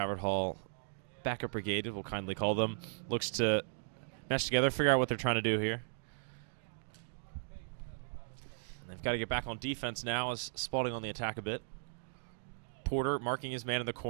Hall backup brigade, we'll kindly call them. Looks to mesh together, figure out what they're trying to do here. They've got to get back on defense now as Spalding on the attack a bit. Porter marking his man in the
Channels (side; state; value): left; silent; digital silence